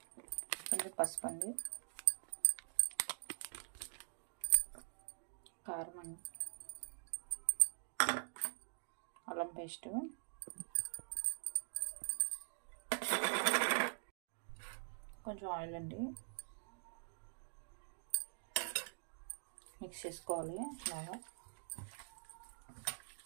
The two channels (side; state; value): left; silent; digital silence